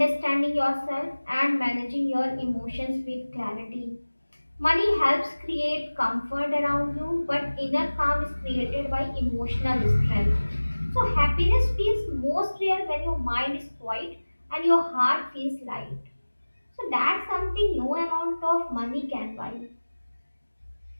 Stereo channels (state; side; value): inverted; both; correlation -1.00